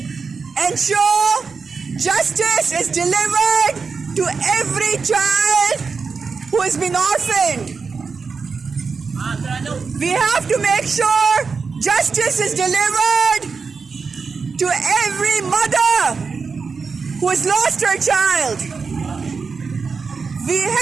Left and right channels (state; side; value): quieter; left; 5.1 dB